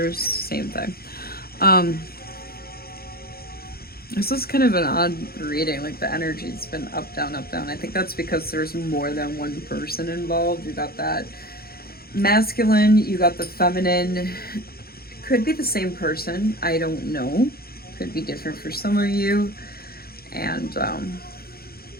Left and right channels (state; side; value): late; right; 0.44 ms